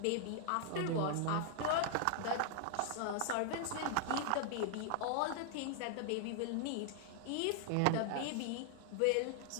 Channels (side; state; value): both; different; correlation 0.00